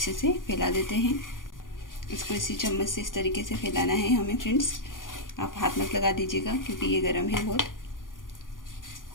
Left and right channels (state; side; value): late; right; 0.89 ms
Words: से फैला देते हैं। इसको इसी चम्मच से इस तरीके से फैलाना है हमें फ्रेंड्स। आप हाथ मत लगा दीजिएगा, क्योंकि ये गर्म है बहुत।